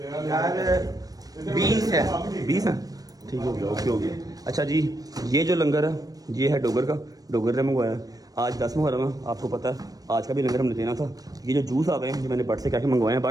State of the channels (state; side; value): late; left; 0.18 ms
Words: 20 है, ठीक हो गया, ओके हो गया। अच्छा जी ये जो लंगर है ये है डोगर ने मंगवाया। आज 10 मुहर्रम है, आपको पता है आज का भी लंगर हमने देना था। ये जो जूस आ गए हैं जो मैंने बट से क्या मंगवाए हैं,